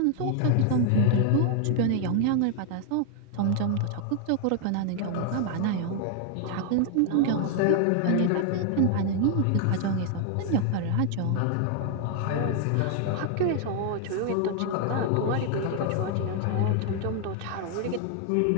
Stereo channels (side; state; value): both; different; correlation 0.00